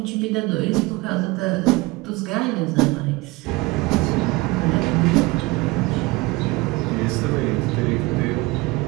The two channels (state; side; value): quieter; left; 22.8 dB